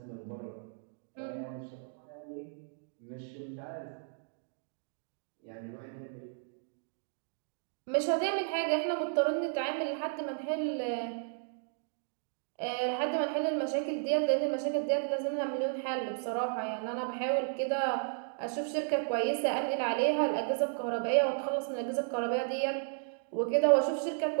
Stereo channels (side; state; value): left; silent; digital silence